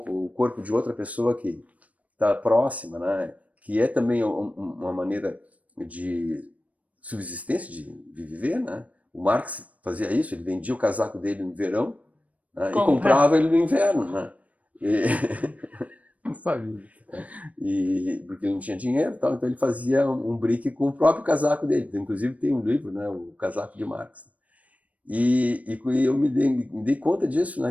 corpo de outra pessoa que está próxima, né? Que é também uma maneira de subsistência, de viver, né? O Marx fazia isso, ele vendia o casaco dele no verão, né? E comprava ele no inverno, né? Não sabia. Porque ele não tinha dinheiro, tal, então ele fazia um brick com o próprio casaco dele. Inclusive tem um livro, né? O Casaco de Marx. E eu me dei conta disso, né?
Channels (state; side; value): late; left; 0.069 ms